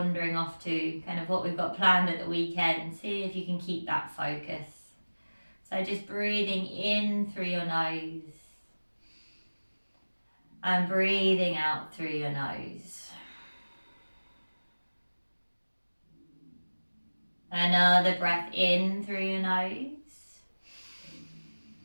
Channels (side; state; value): both; inverted; correlation -1.00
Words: off to kind of what we've got planned at the weekend. See if you can keep that focus. So just breathing in through your nose and breathing out through your nose. Another breath in through your nose.